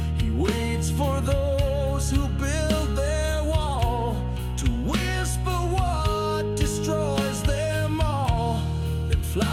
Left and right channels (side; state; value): both; identical; correlation 1.00